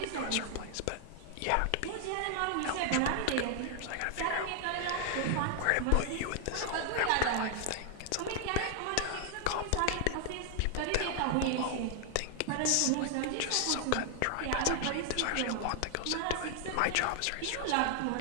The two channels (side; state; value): both; different; correlation 0.00